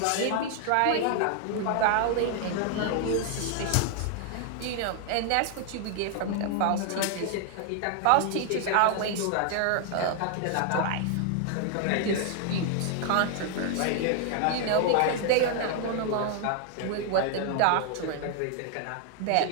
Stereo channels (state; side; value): different; both; correlation 0.00